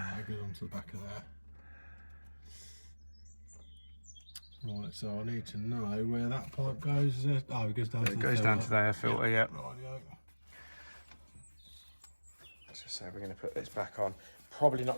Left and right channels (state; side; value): inverted; both; correlation -1.00